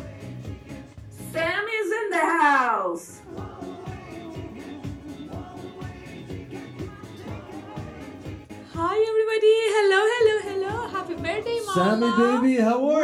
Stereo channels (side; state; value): both; identical; correlation 1.00